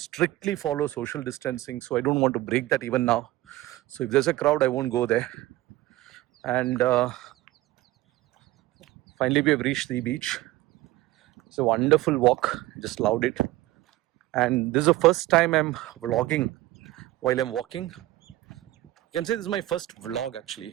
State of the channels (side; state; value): left; quieter; 17.0 dB